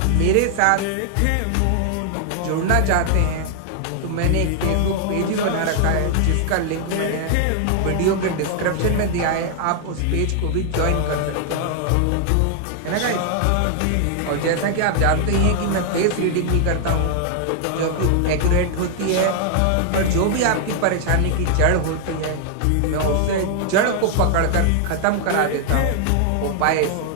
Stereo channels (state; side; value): different; both; correlation 0.00